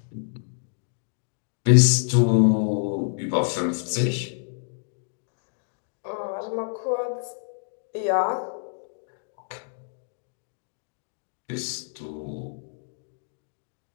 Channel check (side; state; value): right; silent; digital silence